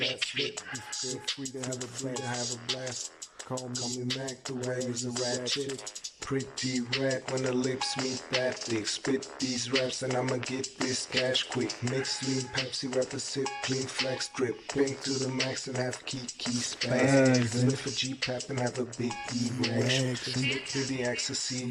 slip. Feel free to have a blast. Call me Mac, the way is a ratchet. Pretty rat when the lips meet that thick. Spit these raps and I'ma get this cash quick. Mix lean Pepsi, wrap a sip, clean flex drip. Pink to the max and have key spaz. Sniff a G-pap and have a big erection. Split to the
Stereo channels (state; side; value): identical; both; correlation 1.00